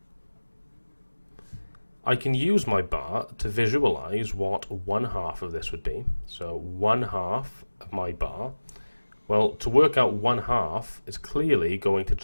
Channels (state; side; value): inverted; both; correlation -1.00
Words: I can use my bar to visualize what 1/2 of this would be. So 1/2 of my bar, well, to work out 1/2 is clearly going to